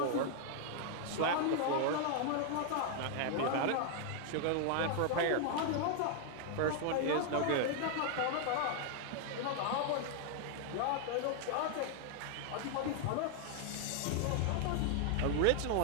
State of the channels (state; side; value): different; both; correlation 0.00